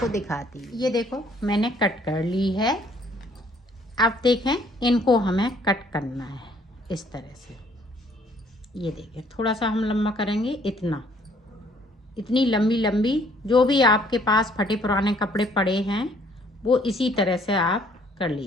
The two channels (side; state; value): both; normal; correlation 0.62